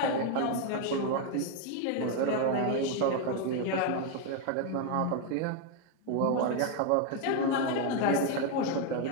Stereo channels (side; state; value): both; different; correlation 0.01